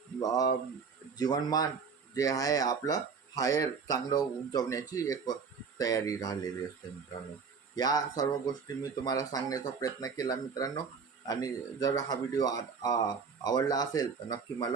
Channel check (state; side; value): quieter; left; 5.6 dB